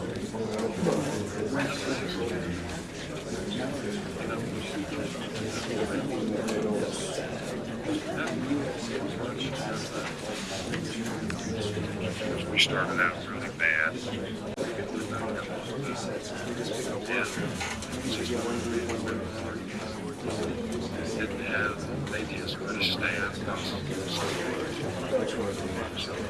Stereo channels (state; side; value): identical; both; correlation 1.00